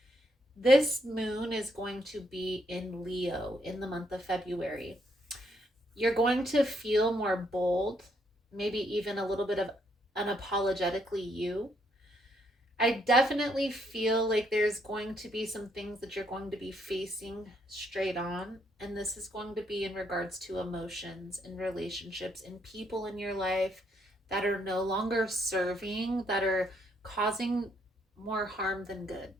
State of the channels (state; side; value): normal; both; correlation 0.73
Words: this moon is going to be in Leo in the month of February. You're going to feel more bold, maybe even a little bit of unapologetically you. I definitely feel like there's going to be some things that you're going to be facing straight on. And this is going to be in regards to emotions and relationships and people in your life that are no longer serving, that are causing more harm than good.